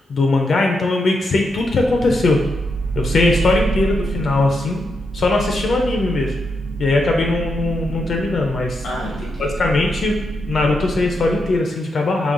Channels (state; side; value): normal; both; correlation 0.83